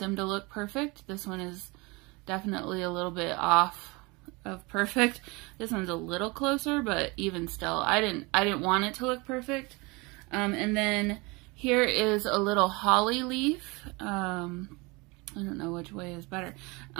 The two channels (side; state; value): left; quieter; 26.3 dB